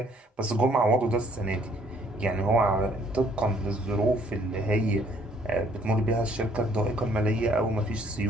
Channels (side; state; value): both; normal; correlation 0.62